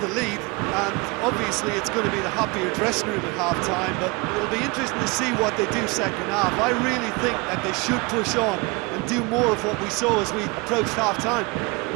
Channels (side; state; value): left; quieter; 27.2 dB